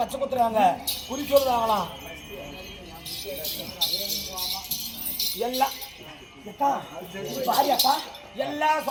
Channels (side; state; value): both; identical; correlation 1.00